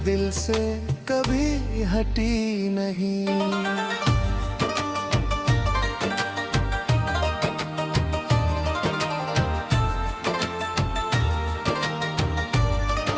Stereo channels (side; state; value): both; identical; correlation 1.00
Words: दिल से कभी हटी नहीं।